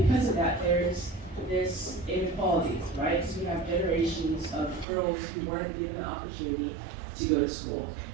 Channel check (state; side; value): drops out; left; at 4.9 s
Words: because of that, there's this inequality, right? Because we have generations of girls who weren't given the opportunity to go to school.